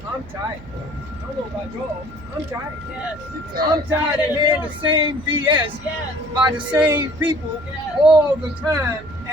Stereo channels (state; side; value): noise; right; hum, 18 dB below the sound